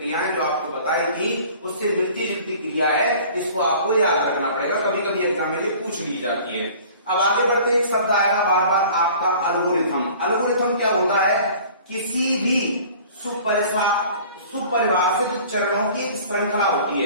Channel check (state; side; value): inverted; both; correlation -0.47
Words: जो आपको बताई थी उससे मिलती जुलती क्रिया है, इसको आपको याद रखना पड़ेगा, कभी कभी एग्जाम में ये पूछ ली जाती है। अब आगे बढ़ते एक शब्द आएगा बार बार आपका एल्गोरिथम। एल्गोरिथम क्या होता है, किसी भी सुपरिभाषित चरणों की एक श्रृंखला होती